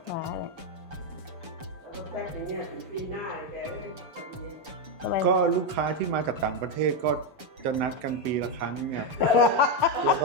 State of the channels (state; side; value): late; left; 7.0 ms